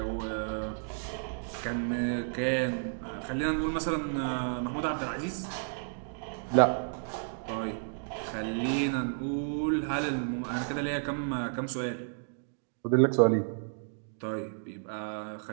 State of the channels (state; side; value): silent; left; digital silence